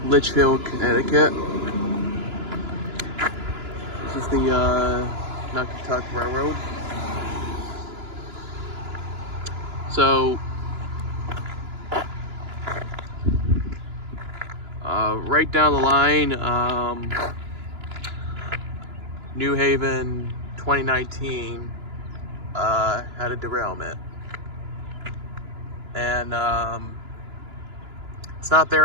Litchfield, Connecticut. This is the Naugatuck Railroad. So, right down the line, New Haven 2019 had a derailment. And it's not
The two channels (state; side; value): late; left; 2.9 ms